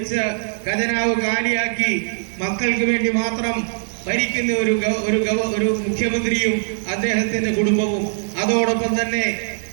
ഖജനാവ് കാലിയാക്കി മക്കൾക്ക് വേണ്ടി മാത്രം ഭരിക്കുന്ന ഒരു മുഖ്യമന്ത്രിയും അദ്ദേഹത്തിന്റെ കുടുംബവും, അതോടൊപ്പം തന്നെ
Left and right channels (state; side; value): silent; left; digital silence